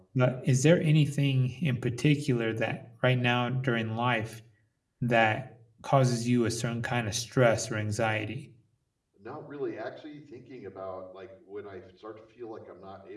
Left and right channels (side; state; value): both; identical; correlation 1.00